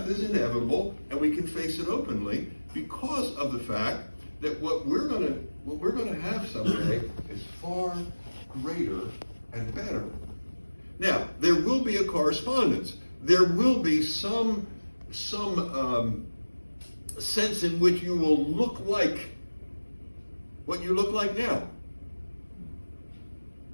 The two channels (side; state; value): both; inverted; correlation -1.00